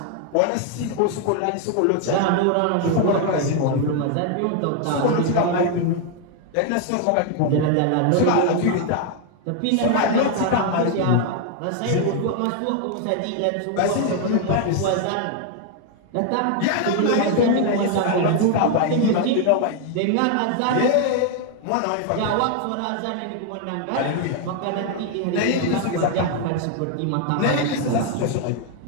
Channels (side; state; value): both; different; correlation 0.01